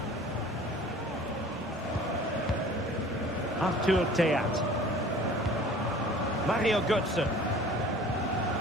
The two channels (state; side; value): normal; both; correlation 0.47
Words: Arthur Teat. Mario Götze.